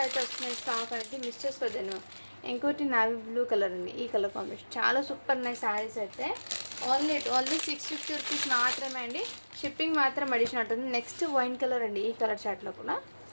అయితే వస్తున్నాయి స్టాక్ అనేది, మిస్ చేసుకోవద్దండి మ్యామ్. ఇంకోటి నావీ బ్లూ కలర్ ఉంది, ఈ కలర్ కాంబినేషన్ చాలా సూపర్ ఉన్నాయి శారీస్ అయితే. ఓన్లీ 650 రూపీస్ మాత్రమే అండి. షిప్పింగ్ మాత్రం అడిషన్ ఉంటుంది. నెక్స్ట్ వైన్ కలర్ అండి, ఈ కలర్ చార్ట్లో కూడా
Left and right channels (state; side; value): inverted; both; correlation -1.00